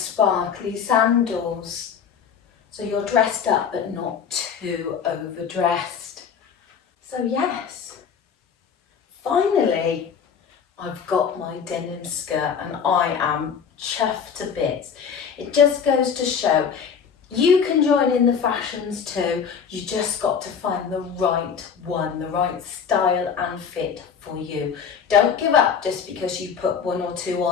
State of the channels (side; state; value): right; quieter; 6.9 dB